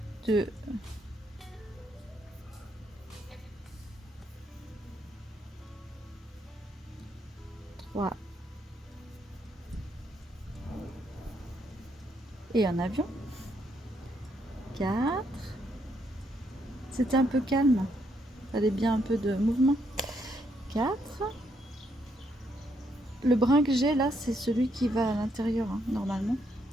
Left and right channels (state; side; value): normal; both; correlation 0.75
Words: 2, 3 et un avion. 4. C'était un peu calme. Il fallait bien un peu de mouvement. 4. Le brin que j'ai là, c'est celui qui va à l'intérieur, hein, normalement.